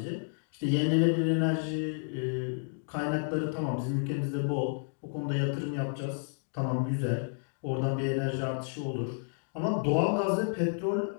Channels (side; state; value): right; silent; digital silence